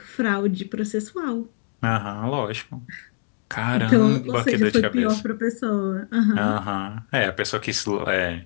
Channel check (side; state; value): right; silent; digital silence